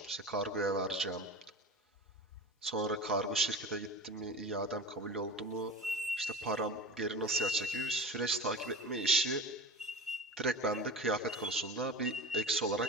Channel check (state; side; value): normal; both; correlation 0.32